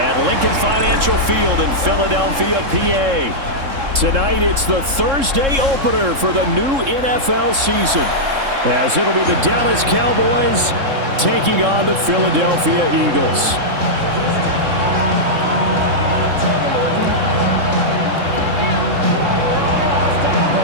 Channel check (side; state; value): left; late; 3.7 ms